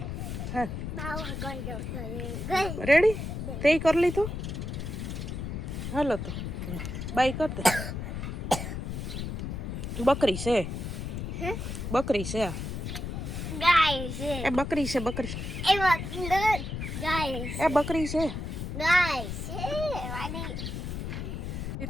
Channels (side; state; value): left; noise; rumble, 5 dB below the sound